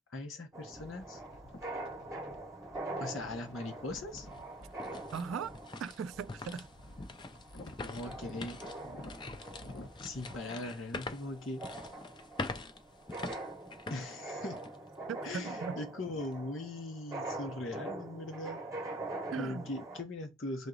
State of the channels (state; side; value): normal; both; correlation 0.50